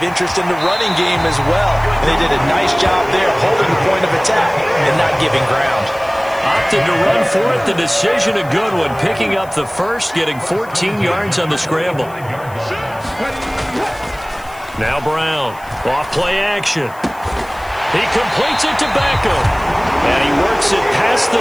interest in the running game as well. And they did a nice job there holding the point of attack and not giving ground. Opted to run for it. The decision a good one. Picking up the first, getting 14 yards on the scramble. Now Brown. Off play action. He completes it to Beckham. And he works it past the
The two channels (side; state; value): left; noise; hiss, 24 dB below the sound